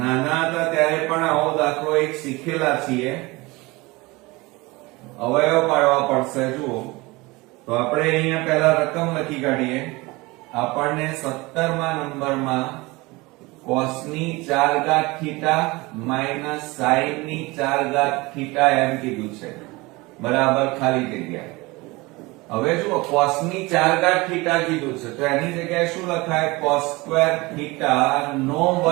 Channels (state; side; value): quieter; left; 23.0 dB